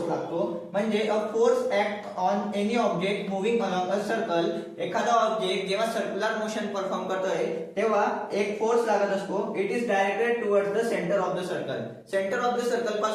लागतो. म्हणजे a force act on any object moving along a circle. एखादा ऑब्जेक्ट जेव्हा सर्क्युलर मोशन परफॉर्म करतोय तेव्हा एक फोर्स लागत असतो. It is directed towards the centre of the circle. Centre of the circle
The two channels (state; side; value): identical; both; correlation 1.00